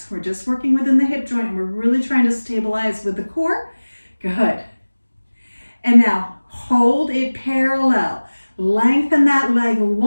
We're just working within the hip joint and we're really trying to stabilize with the core. Good. And now hold it parallel. Lengthen that leg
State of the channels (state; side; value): inverted; both; correlation -1.00